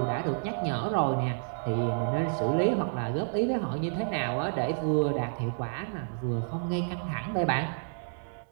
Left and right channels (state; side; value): silent; left; digital silence